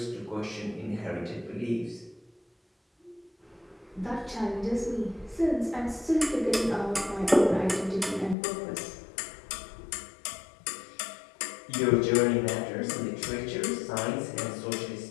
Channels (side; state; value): right; drops out; at 8.3 s